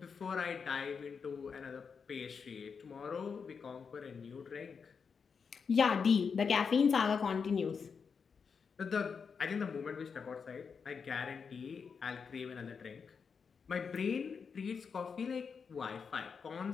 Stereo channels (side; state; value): right; quieter; 5.9 dB